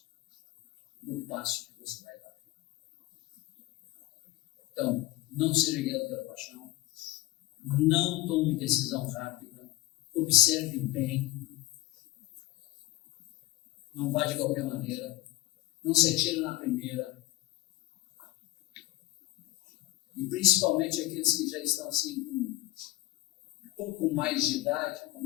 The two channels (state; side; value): quieter; right; 17.1 dB